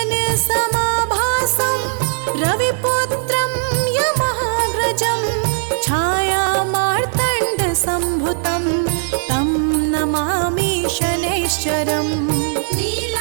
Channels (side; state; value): left; silent; 67 dB below the other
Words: रविपुत्रं यमाग्रजं छायामार्तण्डसम्भुतं तं नमामि शनैश्चरम्